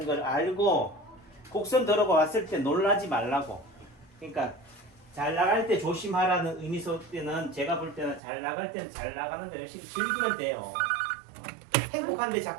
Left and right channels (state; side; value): drops out; left; at 8.2 s